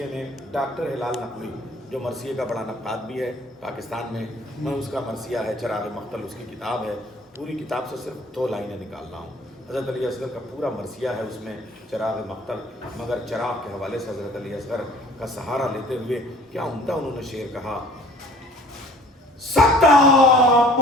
میں ڈاکٹر ہلال نقوی جو مرثیے کا بڑا نقاد بھی ہے پاکستان میں اس کا مرثیہ ہے چراغ مقتل، اس کی کتاب ہے، پوری کتاب سے صرف 2 لائنیں نکالنا ہوں۔ حضرت علی اصغر کا پورا مرثیہ ہے اس میں چراغ مقتل، مگر چراغ کے حوالے سے حضرت علی اصغر کا سہارا لیتے ہوئے کیا عمدہ انہوں نے شعر کہا، سکتہ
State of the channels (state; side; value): normal; both; correlation 0.51